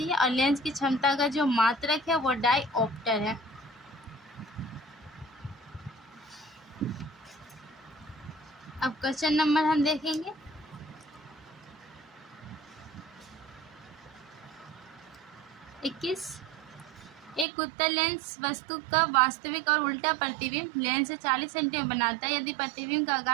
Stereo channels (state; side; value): drops out; left; at 17.4 s